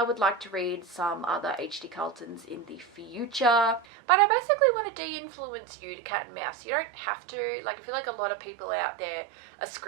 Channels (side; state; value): left; drops out; at 3.9 s